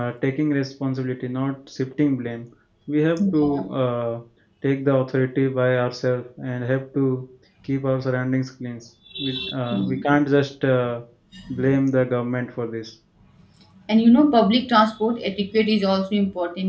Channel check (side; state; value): both; identical; correlation 1.00